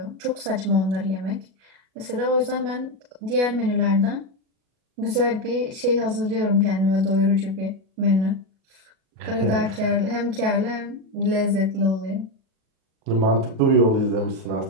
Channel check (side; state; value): left; late; 37 ms